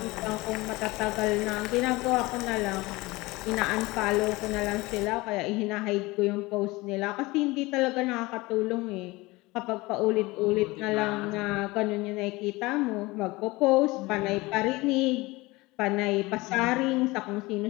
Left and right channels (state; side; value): quieter; right; 21.8 dB